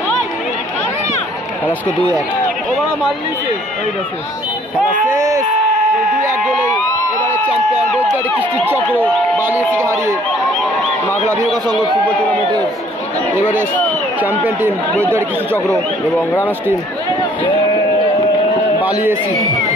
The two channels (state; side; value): normal; both; correlation 0.59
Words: খেলা স্কোর 2-1। খেলা শেষ 2-1 গোলে। এবারে চ্যাম্পিয়ন বৈদ্যুতিক কৃষ্টির চক্র বালিয়েসিকে হারিয়ে মাগলা ভিওকা সংঘ ফুটবল টুর্নামেন্টের এবারে চ্যাম্পিয়ন টিম বৈদ্যুতিক কৃষ্টি চক্র এবং রানার্স টিম বালিয়েসি।